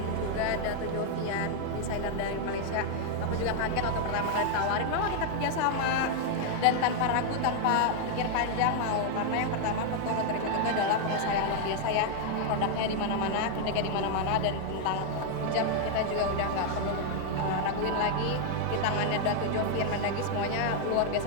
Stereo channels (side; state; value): both; different; correlation 0.00